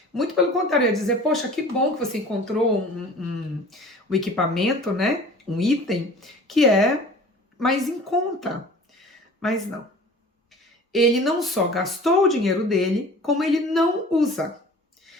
Muito pelo contrário, eu ia dizer, poxa, que bom que você encontrou um equipamento, né? Um item que é mais em conta. Mas não. Ele não só gastou o dinheiro dele, como ele não usa.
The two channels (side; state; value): both; normal; correlation 0.44